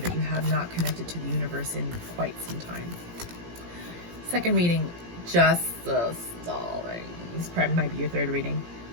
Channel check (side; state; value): left; late; 17 ms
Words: you have not connected to the universe in quite some time. Second reading, Justice, darling. This probably might be your third reading.